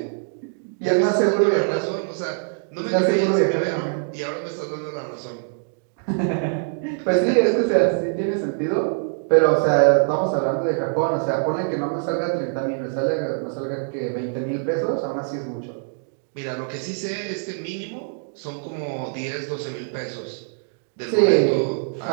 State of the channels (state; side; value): silent; left; digital silence